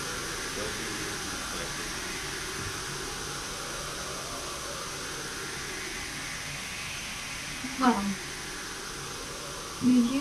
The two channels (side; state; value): both; identical; correlation 1.00